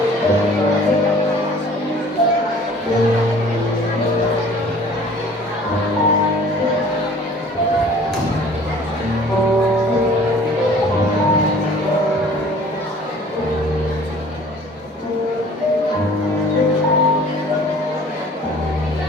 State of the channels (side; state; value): both; normal; correlation 0.50